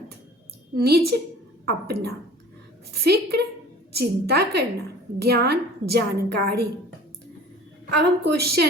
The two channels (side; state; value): both; normal; correlation 0.45